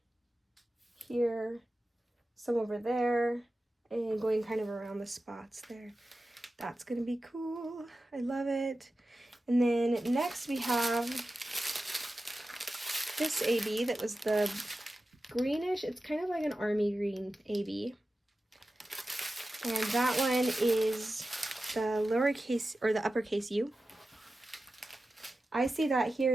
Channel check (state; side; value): normal; both; correlation 0.93